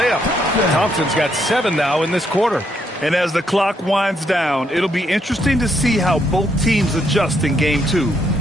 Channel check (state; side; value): normal; both; correlation 0.75